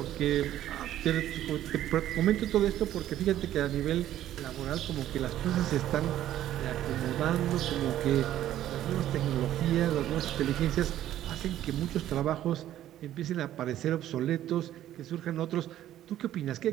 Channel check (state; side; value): quieter; left; 12.5 dB